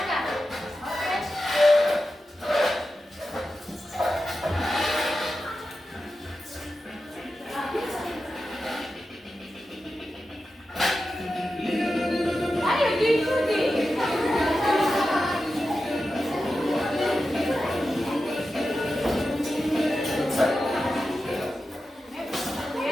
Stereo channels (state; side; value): normal; both; correlation 0.91